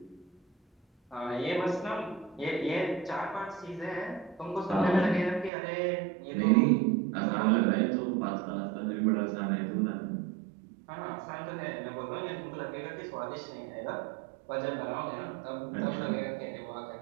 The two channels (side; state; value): left; drops out; at 5.5 s